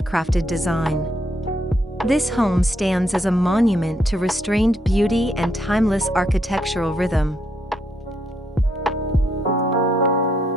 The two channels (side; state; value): both; normal; correlation 0.75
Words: design. This home stands as a monument to restrained beauty and timeless architectural rhythm.